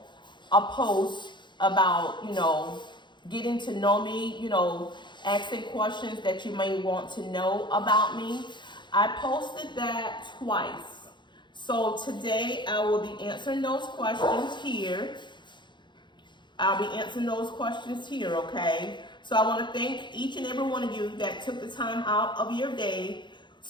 a post about, getting to know me, asking questions that you may want to know about me. I posted that twice. So today I will be answering those questions here. Okay? So I want to thank each and every one of you that took the time out of your day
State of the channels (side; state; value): right; late; 0.22 ms